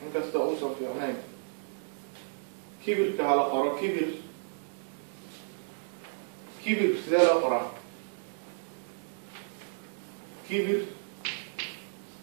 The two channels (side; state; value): left; silent; digital silence